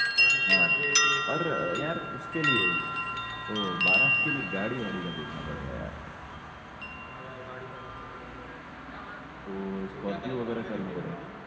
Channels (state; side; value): identical; both; correlation 1.00